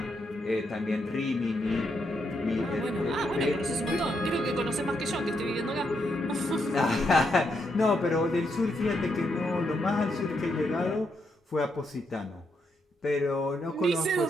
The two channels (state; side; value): normal; both; correlation 0.79